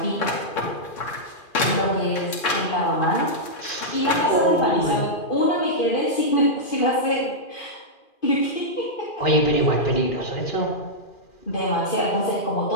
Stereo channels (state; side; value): late; right; 2.4 ms